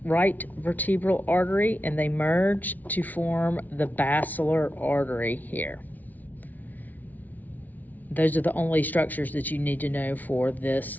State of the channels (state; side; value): late; right; 0.078 ms